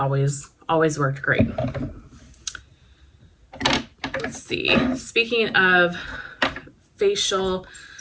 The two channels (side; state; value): both; identical; correlation 1.00